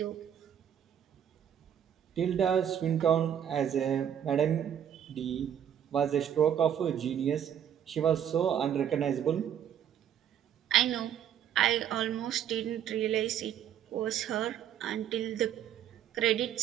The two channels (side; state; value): left; quieter; 9.5 dB